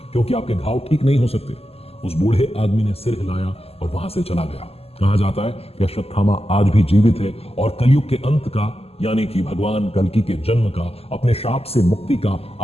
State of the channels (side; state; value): right; late; 0.29 ms